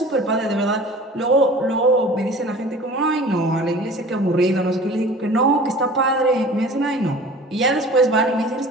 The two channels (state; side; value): normal; both; correlation 0.43